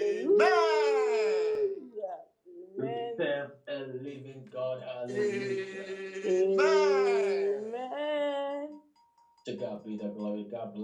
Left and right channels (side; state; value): both; identical; correlation 1.00